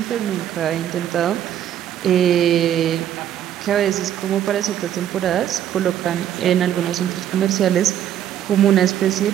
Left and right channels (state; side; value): quieter; left; 10.7 dB